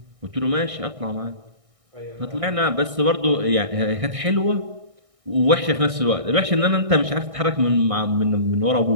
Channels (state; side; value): late; left; 1.6 ms